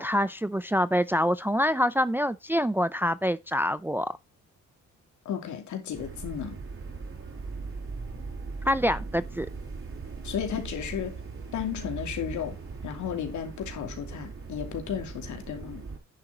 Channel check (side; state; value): both; normal; correlation 0.69